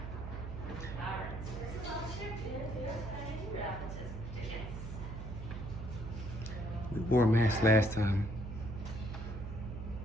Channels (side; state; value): right; noise; hum, 7 dB below the sound